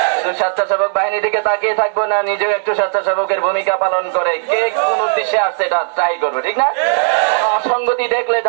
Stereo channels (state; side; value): silent; left; 69 dB below the other